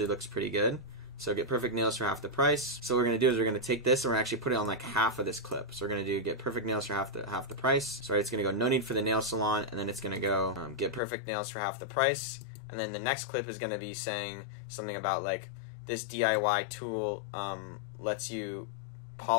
looks pretty good. So get perfect nails for half the price. So what we're going to do is we're going to take this and we're actually put it on like half of this clip. So we're going to do get perfect nails for half the price. So it's going to go no need for the nail salon, and then it's going to go get perfect nails for half the price. And then the next clip is going to be saying something about like this DIY tool lets you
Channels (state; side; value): drops out; right; at 11.0 s